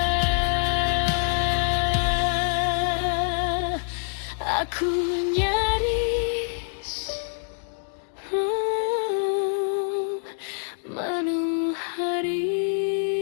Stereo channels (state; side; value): silent; right; digital silence